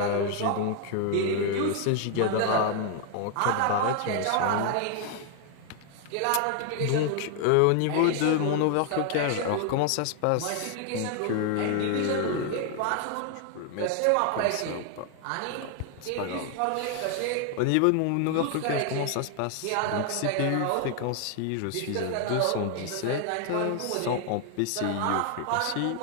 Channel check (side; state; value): both; different; correlation 0.00